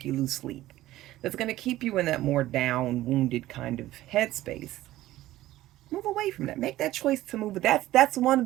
you lose sleep. That's going to keep you in that more down, wounded kind of headspace. Move away from that. Make that choice to move. That's one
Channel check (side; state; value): left; quieter; 15.4 dB